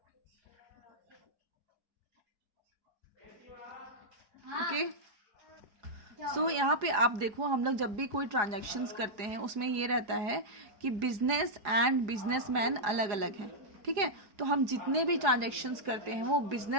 ओके, सो यहाँ पे आप देखो, हम लोग जब भी कोई ट्रांजैक्शंस करते हैं उसमें ये रहता है कि बिजनेस एंड बिजनेसमैन अलग अलग हैं. ठीक है, तो हम जितने भी ट्रांजैक्शंस करते हैं वो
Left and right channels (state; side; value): late; left; 4.9 ms